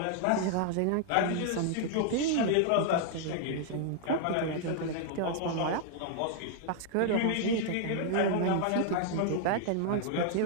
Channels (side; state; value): both; different; correlation -0.01